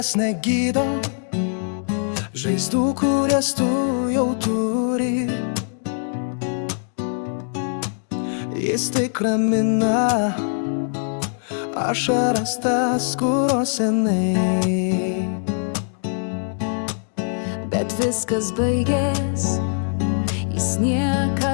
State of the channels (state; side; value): silent; right; digital silence